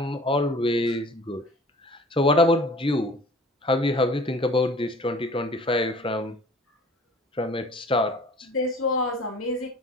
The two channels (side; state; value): both; normal; correlation 0.47